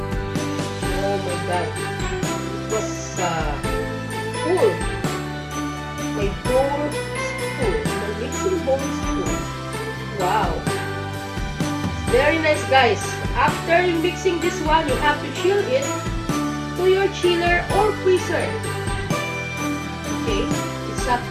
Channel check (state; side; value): identical; both; correlation 1.00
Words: Oh my God. It was full. My bowl is full. My mixing bowl is full. Wow. It's very nice, guys. After mixing this one, you have to chill it to your chiller or freezer. Okay? It's up